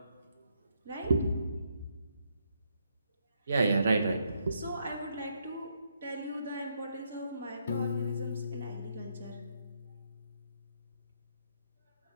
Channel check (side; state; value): both; inverted; correlation -0.75